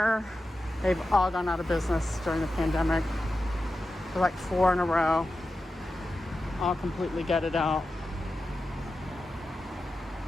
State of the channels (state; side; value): normal; both; correlation 0.92